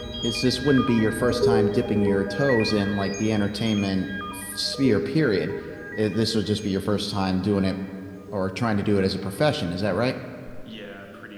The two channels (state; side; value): identical; both; correlation 1.00